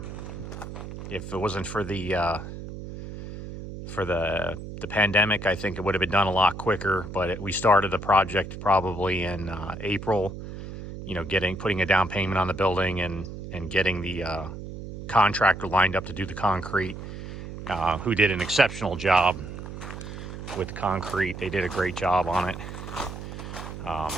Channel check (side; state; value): right; noise; hum, 10 dB below the sound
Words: If it wasn't for the pandemic, I think it would have been done a lot quicker. But we started the project probably in April. You know, putting a down payment on the building and getting the contractor lined up to do the concrete, who did an exceptional job with the concrete. They did a great job on it.